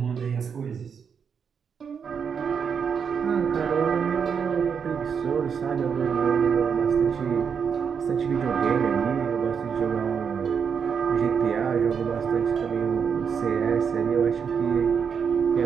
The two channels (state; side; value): quieter; left; 6.7 dB